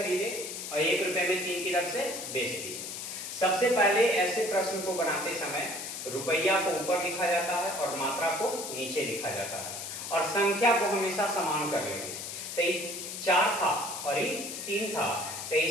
और 1 रुपए में 3 की दर से बेच दिए। सबसे पहले ऐसे प्रश्न को बनाते समय रुपया को ऊपर लिखा जाता है और मात्रा को नीचे लिखा जाता है, और संख्या को हमेशा समान कर लेंगे। तो ये 4 था और ये 3 था, तो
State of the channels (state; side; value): noise; left; hiss, 7 dB below the sound